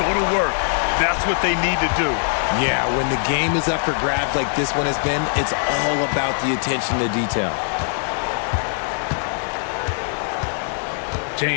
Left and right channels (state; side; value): silent; right; digital silence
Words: to work. That's what they need to do. Yeah, when the game is up for grabs like this one has been, it's all about the attention to detail.